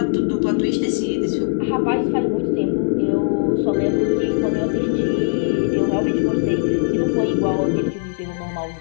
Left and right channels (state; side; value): silent; right; digital silence